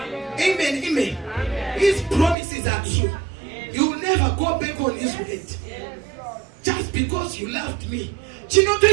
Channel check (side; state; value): left; drops out; at 2.4 s